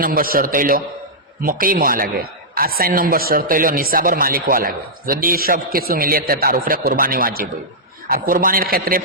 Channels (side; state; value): both; normal; correlation -0.11